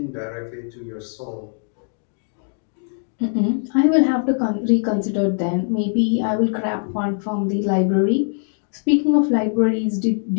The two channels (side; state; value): right; silent; 65 dB below the other